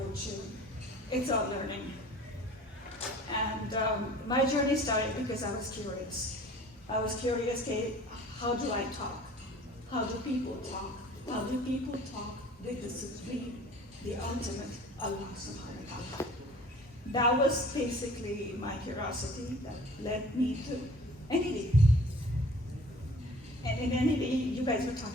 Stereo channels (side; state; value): both; normal; correlation 0.48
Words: it's about learning. And my journey started because I was curious. I was curious, how do I talk? How do people talk? How do people talk with the supreme, the ultimate Allah subhanahu wa ta'ala? That was basically my curiosity that led me to NED. And in NED, you guys were